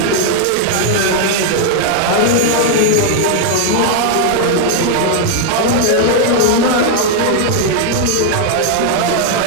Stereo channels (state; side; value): different; both; correlation 0.00